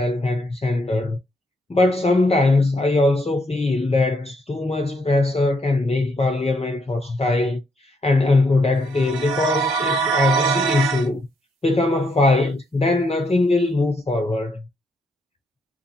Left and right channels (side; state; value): both; normal; correlation 0.75